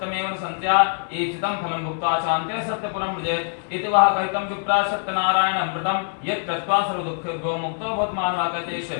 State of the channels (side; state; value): right; silent; 55 dB below the other